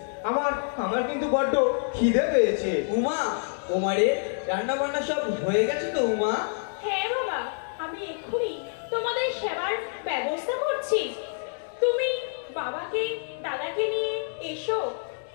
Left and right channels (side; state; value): right; silent; digital silence